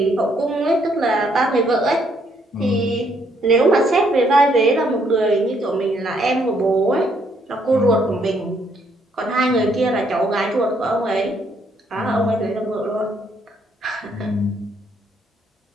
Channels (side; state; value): both; normal; correlation 0.70